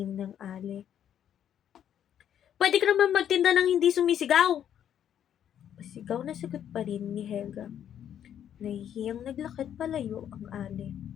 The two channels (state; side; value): quieter; right; 9.8 dB